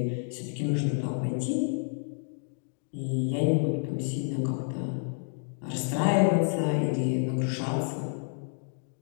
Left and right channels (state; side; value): silent; right; 58 dB below the other